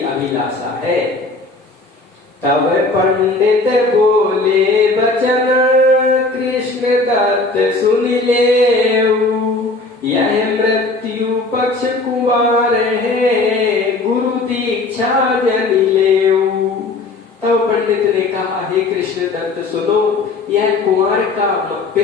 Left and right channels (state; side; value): quieter; right; 3.4 dB